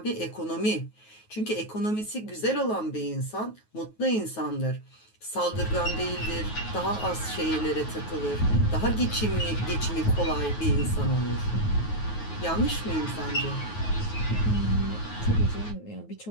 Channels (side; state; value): right; late; 9.3 ms